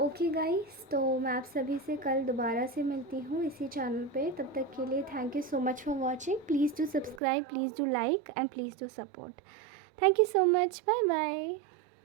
गाइस, तो मैं आप सभी से कल दोबारा से मिलती हूँ इसी चैनल पे। तब तक के लिए thank you so much for watching. Please do subscribe, please do like and please do support. Thank you so much, bye bye.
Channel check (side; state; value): left; drops out; at 7.2 s